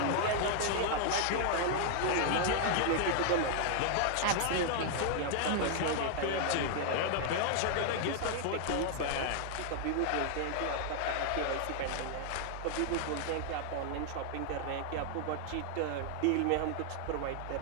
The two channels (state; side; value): different; both; correlation -0.01